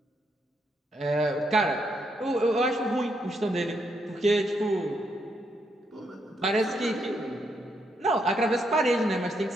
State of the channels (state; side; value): normal; both; correlation 0.77